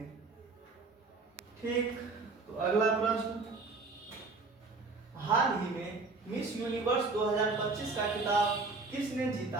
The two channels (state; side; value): quieter; left; 3.8 dB